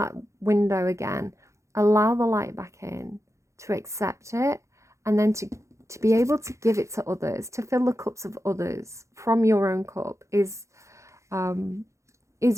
window again, allow the light back in, to accept it, and then to be able to give it to others, to fill the cups of others from your own cup is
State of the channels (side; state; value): left; late; 0.14 ms